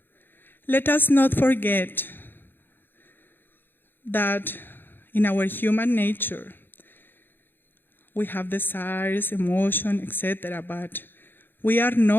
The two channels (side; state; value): right; late; 0.098 ms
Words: let us not forget that in our human nature, we have desires, emotion, etc., but we are